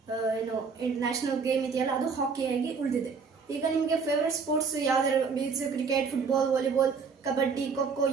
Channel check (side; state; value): left; quieter; 5.3 dB